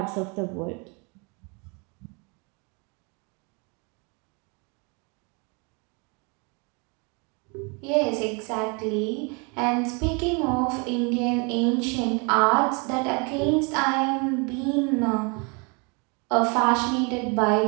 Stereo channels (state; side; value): quieter; left; 32.3 dB